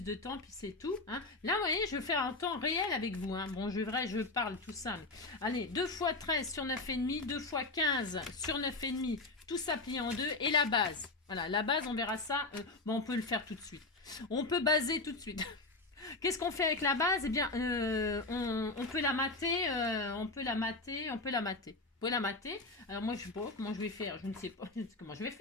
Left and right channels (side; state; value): right; quieter; 3.2 dB